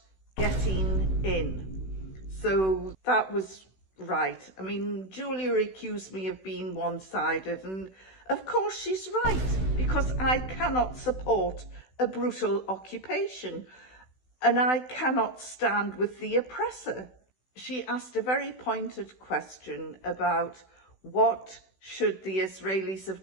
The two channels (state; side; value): late; right; 16 ms